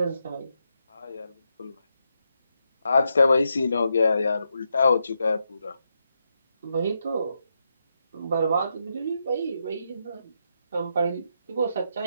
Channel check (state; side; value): inverted; both; correlation -0.83